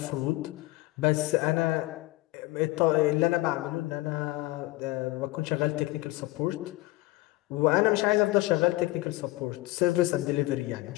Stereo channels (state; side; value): quieter; right; 19.9 dB